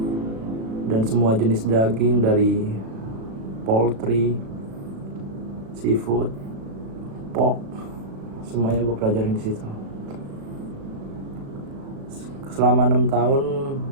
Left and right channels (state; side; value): late; left; 36 ms